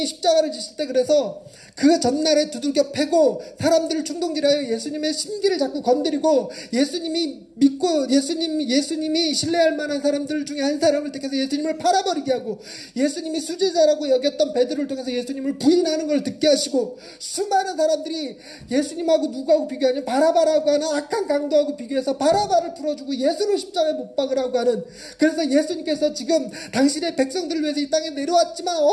십자가를 지실 때 그래서 그 전날에 두들겨 패고 사람들을 충동질하여 예수님의 심기를 자꾸 건드리고 예수님이 믿고 예수님이 신뢰할 만한 사람들 중에 한 사람을 택해서 예수님을 팔아버리게 하고 예수님이 수제자라고 여겼던 베드로를 통해서 예수님을 부인하는 걸 듣게 하시고 수많은 사람들이 예수님하고 누구하고 비교하냐면 바라바라고 하는 악한 강도하고 비교해서 바라바를 풀어주고 예수를 십자가에 못 박으라고 하는 그래서 예수님께서 지금 당신의 백성들을 위해서 이 땅에 내려왔지만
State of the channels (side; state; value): both; identical; correlation 1.00